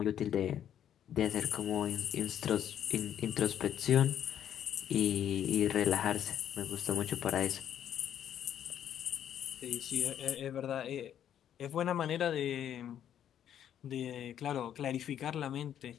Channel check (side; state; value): right; quieter; 10.1 dB